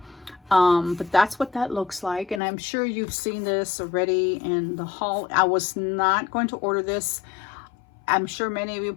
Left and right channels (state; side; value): drops out; right; at 2.4 s